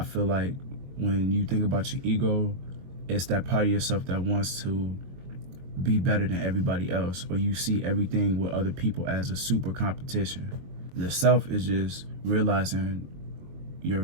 feel like when you think about your ego, it's that part of yourself that wants to be better than everybody else, or you see everything with other people as a super competition. The self is just realizing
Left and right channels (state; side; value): late; left; 22 ms